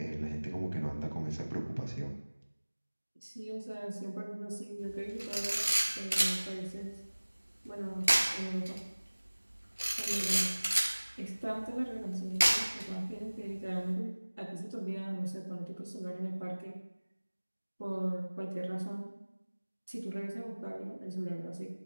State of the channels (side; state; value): both; inverted; correlation -1.00